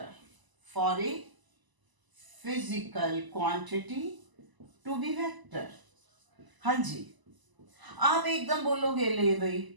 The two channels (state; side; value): late; left; 1.0 ms